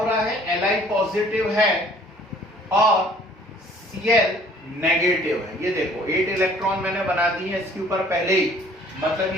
रहा है, Li पॉजिटिव है और Cl नेगेटिव है। ये देखो 8 इलेक्ट्रॉन मैंने बना दिए हैं इसके ऊपर पहले ही, मतलब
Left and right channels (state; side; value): normal; both; correlation 0.55